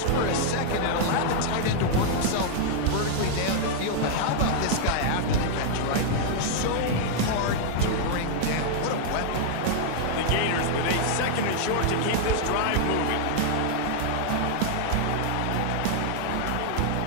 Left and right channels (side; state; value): both; different; correlation -0.01